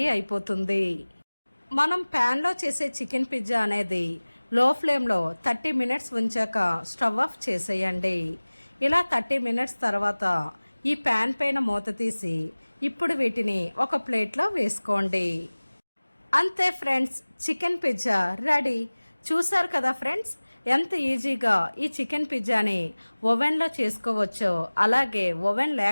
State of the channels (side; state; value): both; inverted; correlation -1.00